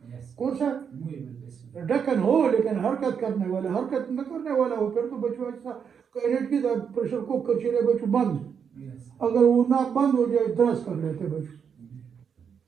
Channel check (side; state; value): left; quieter; 7.1 dB